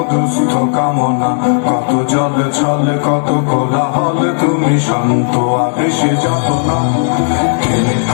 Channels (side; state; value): right; silent; digital silence